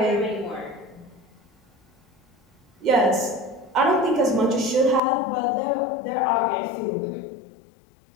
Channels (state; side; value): drops out; right; at 5.0 s